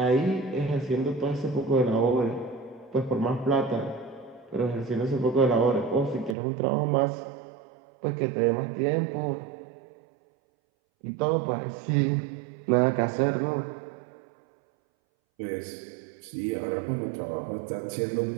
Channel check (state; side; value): drops out; left; at 6.4 s